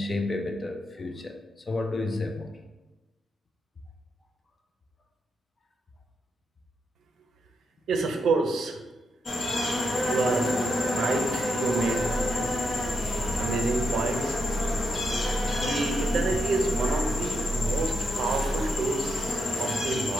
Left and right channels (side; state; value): both; normal; correlation 0.82